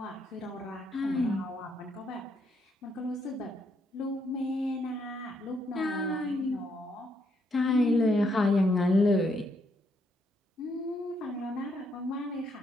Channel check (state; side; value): normal; both; correlation 0.74